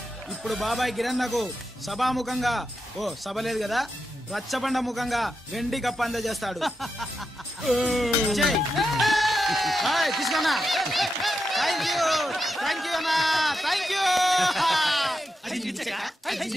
ఇప్పుడు బాబాయ్ గిరన్నకు సభాముఖంగా సభ లేదు కదా, రచ్చబండ ముఖంగా వెండి కప్ప అందజేస్తాడు. తీసుకున్నా. థ్యాంక్ యూ అన్నా, థ్యాంక్ యూ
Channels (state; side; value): normal; both; correlation 0.87